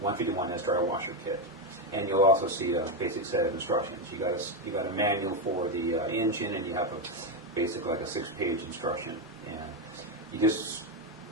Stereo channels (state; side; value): normal; both; correlation 0.08